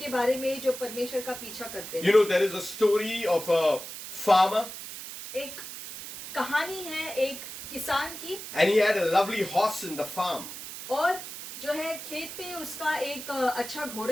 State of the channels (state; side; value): noise; right; hiss, 10 dB below the sound